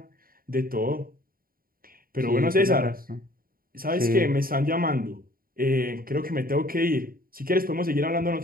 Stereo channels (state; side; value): late; left; 0.42 ms